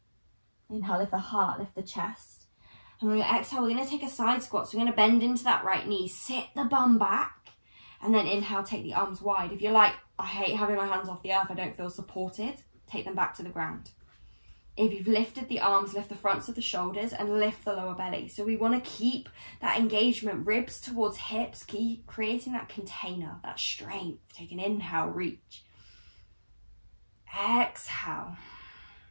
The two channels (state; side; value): inverted; both; correlation -1.00